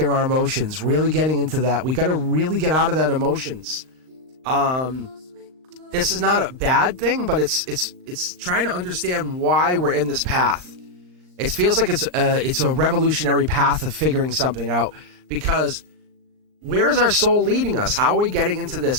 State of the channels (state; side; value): late; left; 39 ms